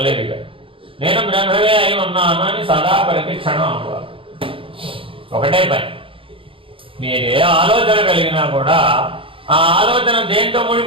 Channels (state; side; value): late; left; 0.26 ms